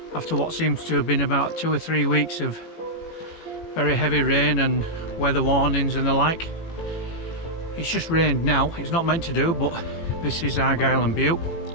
after what seems to have been about 2 or 3 weeks of very heavy rain and weather warnings and the like. It's just rained now. It's not meant to do, but this is Argyll and Bute.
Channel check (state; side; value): late; right; 18 ms